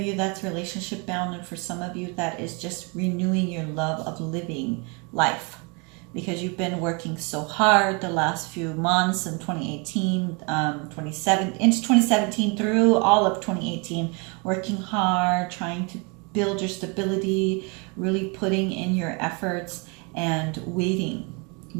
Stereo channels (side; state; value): left; quieter; 31.9 dB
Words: you that's relationship bound, and for some of you that is just renewing your love of living life, because you've been working so hard the last few months in 2018, into 2017 through all of 2018, working hard, trying to build your stability, really putting in your efforts and waiting